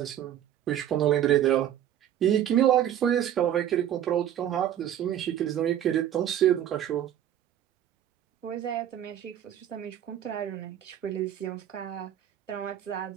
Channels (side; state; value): left; quieter; 10.9 dB